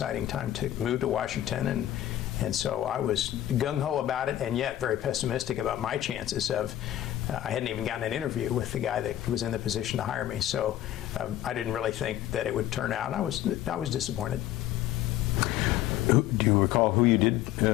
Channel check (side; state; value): right; quieter; 12.7 dB